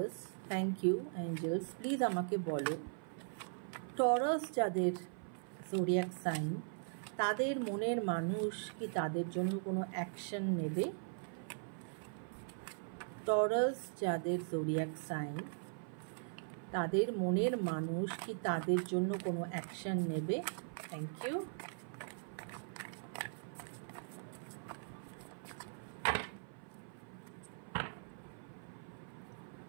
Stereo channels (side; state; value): left; silent; 51 dB below the other